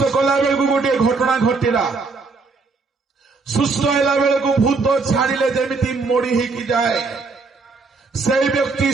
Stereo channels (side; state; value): left; quieter; 4.2 dB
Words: कला बेलू गोटे घटना घटिला सुस्थ होला बेलू भूत छाड़िले जेमिति मोड़ी ही जाए से व्यक्ति